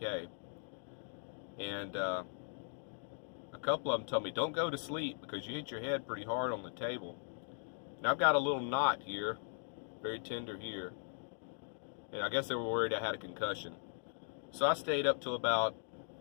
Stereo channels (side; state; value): right; silent; digital silence